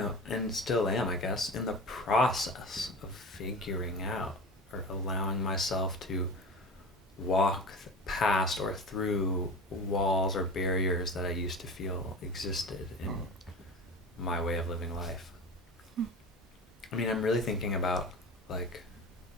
and still am, I guess, in the process of figuring out or allowing myself to walk past or through walls or barriers that I used to feel existed in my way of living life. I mean, I'm really thinking about like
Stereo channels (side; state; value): both; normal; correlation 0.31